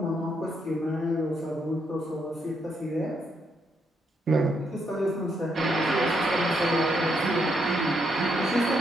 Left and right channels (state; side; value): normal; both; correlation 0.77